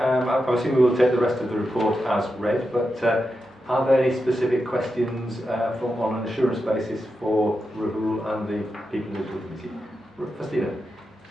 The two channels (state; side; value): normal; both; correlation 0.88